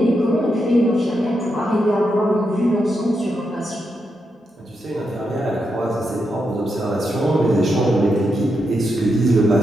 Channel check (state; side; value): normal; both; correlation 0.84